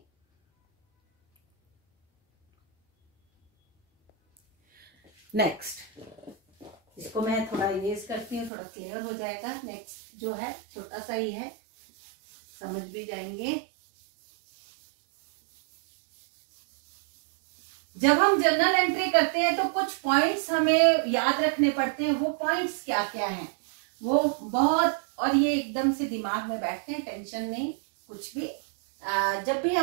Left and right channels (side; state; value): left; drops out; at 8.5 s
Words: नेक्स्ट, इसको मैं थोड़ा इरेज करती हूँ, थोड़ा क्लियर हो जाएगा। नेक्स्ट जो है छोटा सा ही है, समझ भी जाएंगे। जब हम जर्नल एंट्री करते हैं तो कुछ पॉइंट्स हमें याद रखने पड़ते हैं। वो पॉइंट्स क्या क्या हैं वो बहुत, और ये एकदम से दिमाग में बैठते हैं, टेंशन नहीं कुछ भी। जब भी